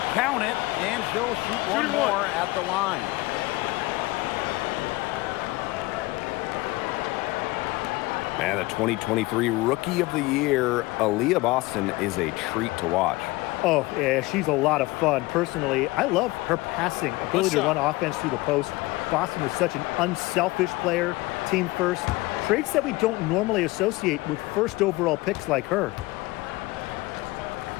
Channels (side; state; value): right; quieter; 21.1 dB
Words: Count it, and she'll shoot one more at the line. And the 2023 Rookie of the Year, Aaliyah Boston, is a treat to watch. Oh, yeah, she's a lot of fun. Personally, I love her passing ability to run offense through the post. Boston is such an unselfish player, team first, traits that we don't normally associate with first overall picks like her.